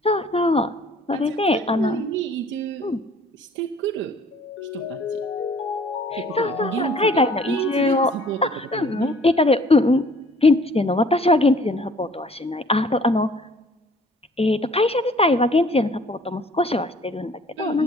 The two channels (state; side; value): normal; both; correlation 0.55